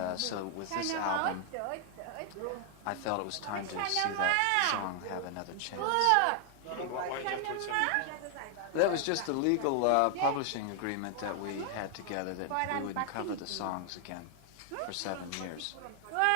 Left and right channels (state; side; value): different; both; correlation 0.00